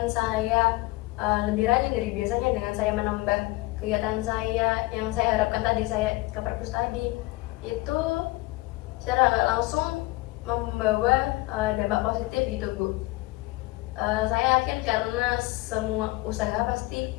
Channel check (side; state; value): right; quieter; 21.1 dB